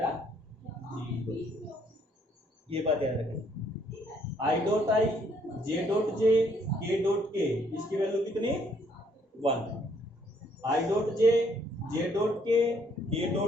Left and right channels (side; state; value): both; normal; correlation 0.67